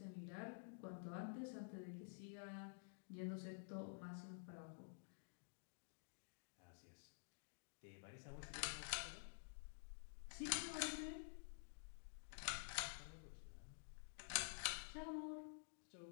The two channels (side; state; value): right; silent; digital silence